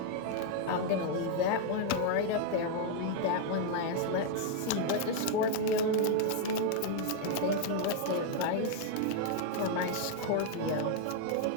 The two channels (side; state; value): both; different; correlation 0.00